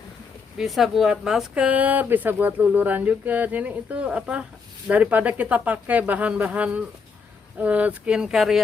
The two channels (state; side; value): quieter; right; 5.3 dB